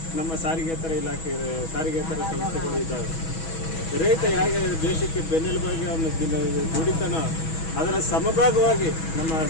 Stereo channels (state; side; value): late; right; 6.2 ms